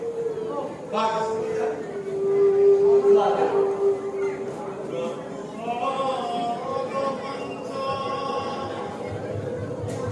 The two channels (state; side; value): identical; both; correlation 1.00